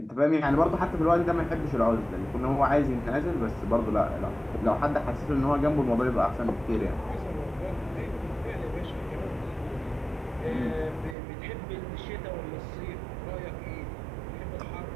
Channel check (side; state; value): left; drops out; at 11.2 s